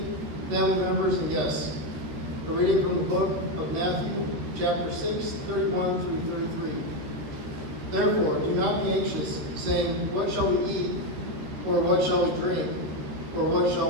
family members, and guests. A reading from the book of Matthew, chapter 6, 31 through 33. Therefore, do not be anxious, saying, what shall we eat, or what shall we drink, or what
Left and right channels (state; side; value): late; left; 13 ms